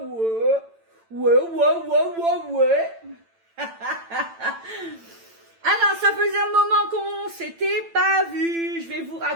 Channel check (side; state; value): left; late; 8.9 ms